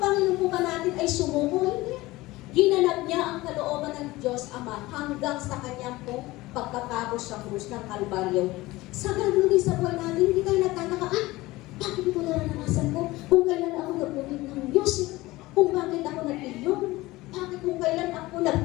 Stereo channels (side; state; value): right; quieter; 19.4 dB